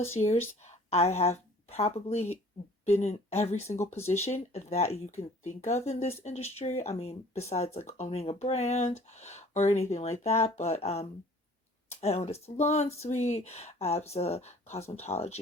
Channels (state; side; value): normal; both; correlation 0.52